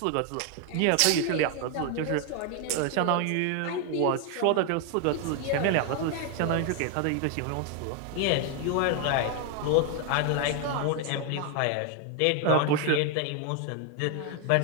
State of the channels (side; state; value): both; different; correlation 0.01